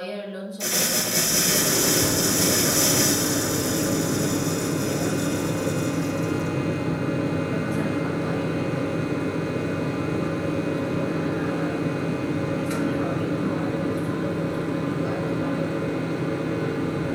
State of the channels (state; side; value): identical; both; correlation 1.00